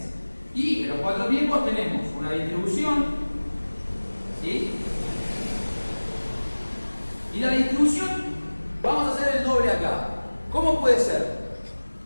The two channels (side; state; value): both; inverted; correlation -1.00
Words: Y en los 4 tiempos tenemos una distribución, ¿sí? Y la distribución, vamos a hacer el doble acá. ¿Cómo puede ser?